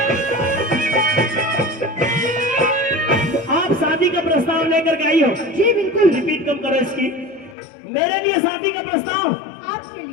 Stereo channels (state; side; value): drops out; right; at 7.6 s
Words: प्रस्ताव लेकर के आई हो। जी बिल्कुल। रिपीट कम करो इसकी। मेरे लिए शादी का प्रस्ताव, आपके